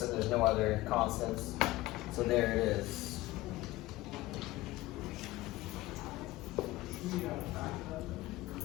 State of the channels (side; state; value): right; quieter; 18.3 dB